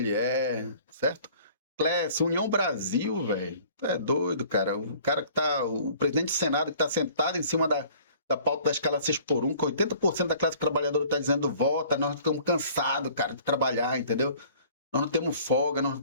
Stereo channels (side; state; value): both; inverted; correlation -0.52